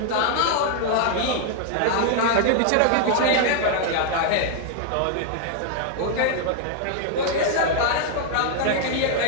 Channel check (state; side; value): different; both; correlation 0.00